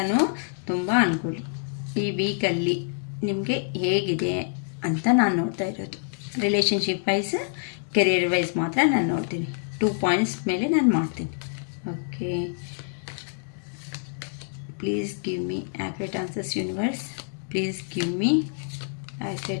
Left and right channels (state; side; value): silent; right; digital silence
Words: ತುಂಬ ಅನ್ಕೊಳ್ಳಿ. ಈ ವೀಕಲ್ಲಿ ನಿಮಗೆ ಹೇಗಿದೆ ಅಂತ ನಾನು ನೋಡ್ತಾ ಇರೋದು. ರಿಲೇಷನ್ಶಿಪ್ ವೈಸ್, ಕೆರಿಯರ್ ವೈಸ್ ಮಾತ್ರ ನಾನು ನೋಡ್ತೀನಿ. 2 ಪಾಯಿಂಟ್ಸ್ ಮೇಲೆ ನಾನು ಮಾಡ್ತೀನಿ. Okay, please give me accurate answers universe. Please give me